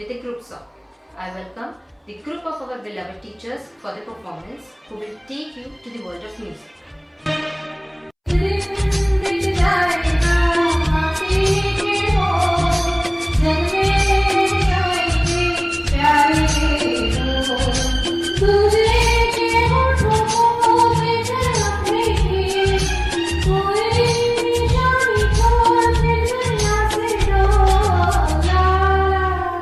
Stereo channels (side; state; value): both; identical; correlation 1.00